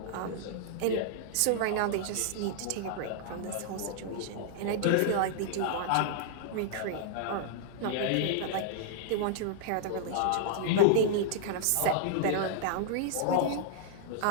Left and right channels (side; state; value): both; different; correlation -0.01